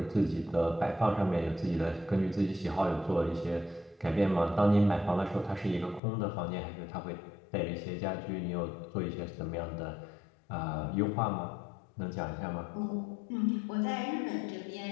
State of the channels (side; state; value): right; drops out; at 6.0 s